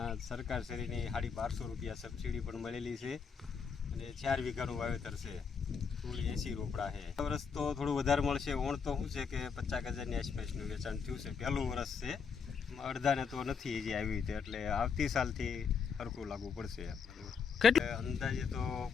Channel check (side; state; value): right; quieter; 6.0 dB